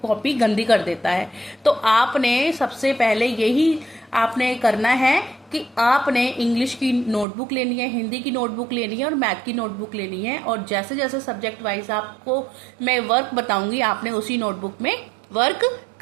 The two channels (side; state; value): left; drops out; at 7.2 s